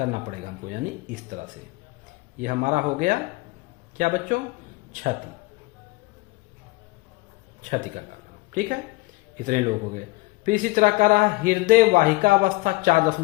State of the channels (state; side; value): quieter; right; 22.9 dB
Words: पड़ेगा हमको, यानी इस तरह से। ये हमारा हो गया क्या बच्चों, छति का कारण। ठीक है, इतने लोग हो गए। फिर इसी तरह का रहा हृदय वाहिका अवस्था